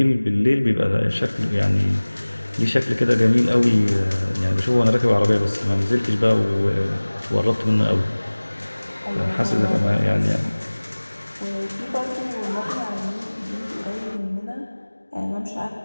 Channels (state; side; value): inverted; both; correlation -1.00